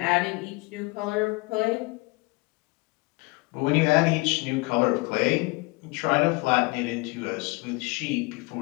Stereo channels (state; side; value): quieter; right; 25.6 dB